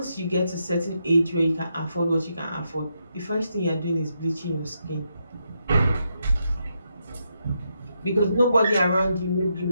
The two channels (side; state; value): both; inverted; correlation -0.81